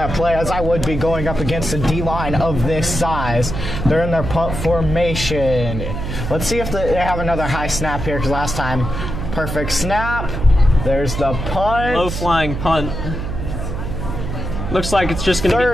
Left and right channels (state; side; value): noise; right; hum, 5 dB below the sound